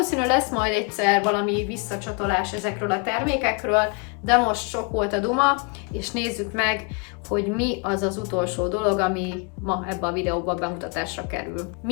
lesz majd egyszer valami visszacsatolás ezekről a termékekről, de most sok volt a duma, és nézzük meg, hogy mi az az utolsó dolog, ami ma ebbe a videóban bemutatásra kerül.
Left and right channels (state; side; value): quieter; right; 34.4 dB